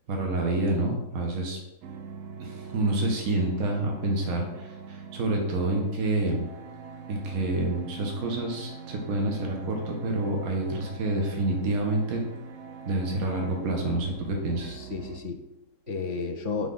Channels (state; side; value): late; left; 3.7 ms